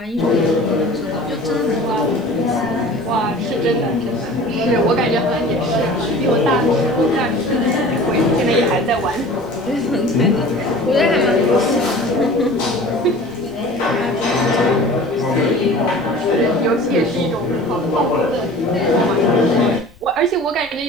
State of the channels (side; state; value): left; noise; rumble, 28 dB below the sound